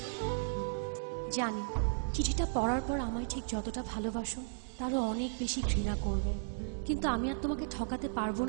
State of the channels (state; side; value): silent; left; 54 dB below the other